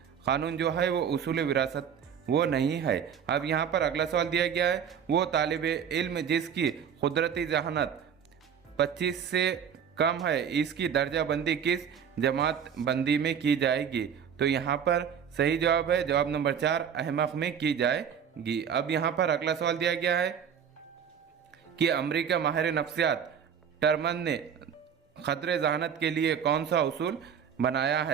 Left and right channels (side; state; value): left; quieter; 7.8 dB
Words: कानून जो है वो उसूल विरासत वो नहीं है। अब यहाँ पर अगला सवाल दिया गया है, वो तालिब इल्म जिसकी कुदरती जहानत 25 से कम है इसकी दर्जा बंदी किस जमात बंदी में की जाएगी। तो यहाँ पर सही जवाब है जवाब नंबर 4, अहमक में की जाएगी। अब यहाँ पर अगला सवाल दिया गया है कि अमेरिका माहिर नफ्सियात टर्मन ने खतरे जहानत के लिए कौन सा उसूल बनाया